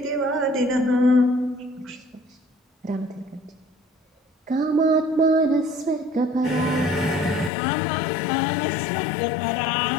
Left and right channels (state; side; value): drops out; right; at 7.5 s